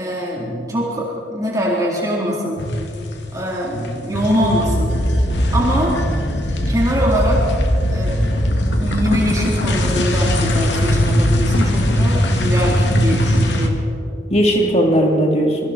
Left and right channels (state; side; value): normal; both; correlation 0.76